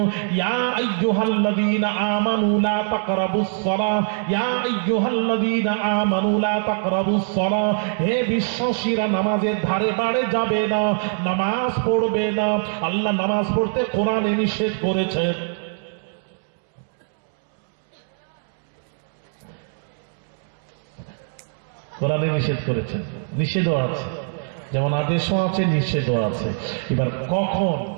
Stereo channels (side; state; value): left; silent; 64 dB below the other